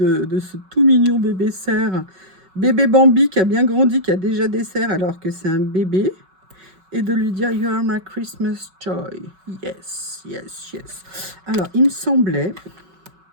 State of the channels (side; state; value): left; late; 5.3 ms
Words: ce tout mignon bébé cerf, bébé Bambi qui a bien grandi, qui a déjà des cerfs alors que c'est un bébé. Et de lui dire « You are my Christmas joy ». Yes, yes, yes. Alors, il me semblait